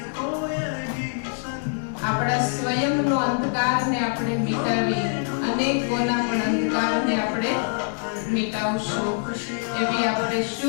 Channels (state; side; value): silent; right; 62 dB below the other